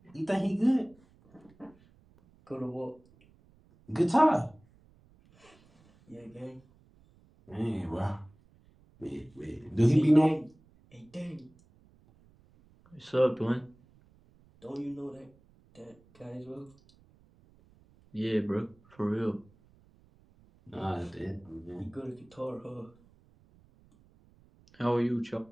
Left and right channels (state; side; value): noise; right; rumble, 29 dB below the sound